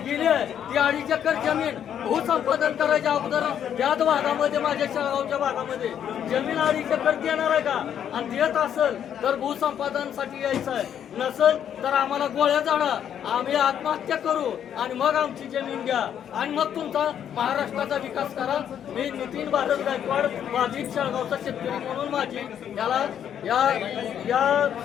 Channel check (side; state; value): right; quieter; 9.3 dB